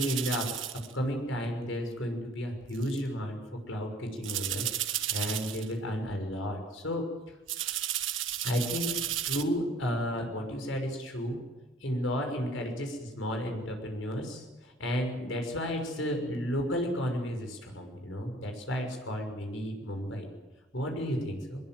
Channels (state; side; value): normal; both; correlation 0.54